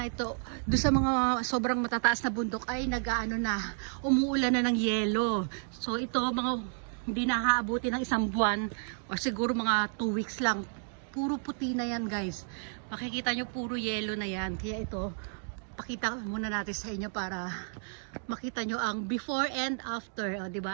Ito, doon sa mga sobrang matataas na bundok ay nag-ano na, umuulan na ng yelo. So ito, mga hindi nakaabuti ng isang buwan o siguro mga 2 weeks lang. Puro puti na yan guys. Makikita nyo puro yelo na yan. Kaya ito, pakita muna natin sa inyo para makita nyo ang before and after, o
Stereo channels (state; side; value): silent; left; 57 dB below the other